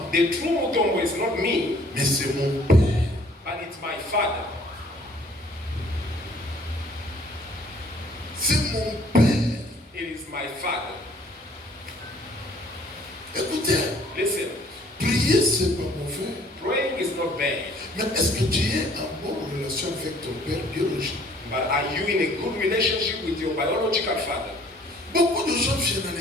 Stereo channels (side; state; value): both; normal; correlation 0.58